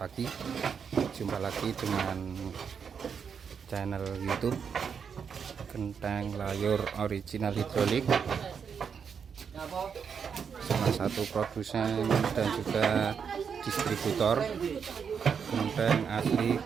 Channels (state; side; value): quieter; left; 6.7 dB